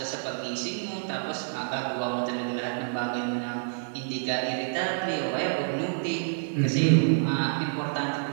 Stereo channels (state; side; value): silent; left; digital silence